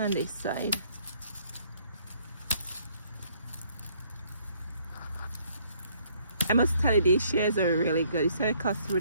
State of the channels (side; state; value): both; inverted; correlation -0.65